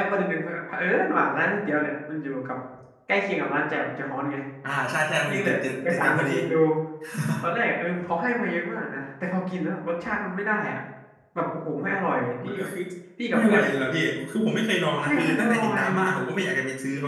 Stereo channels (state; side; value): identical; both; correlation 1.00